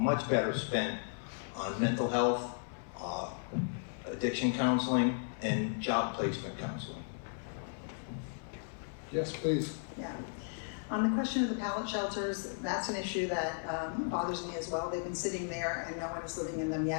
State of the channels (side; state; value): right; silent; 54 dB below the other